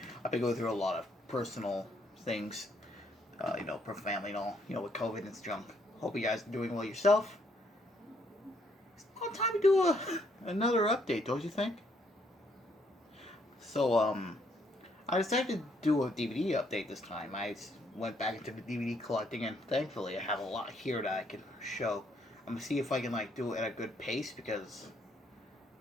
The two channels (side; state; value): both; normal; correlation 0.70